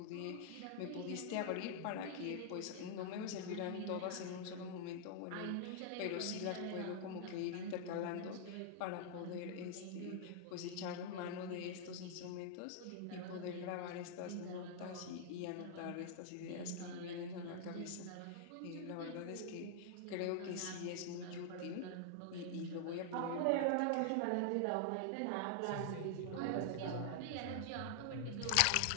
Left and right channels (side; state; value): both; different; correlation -0.01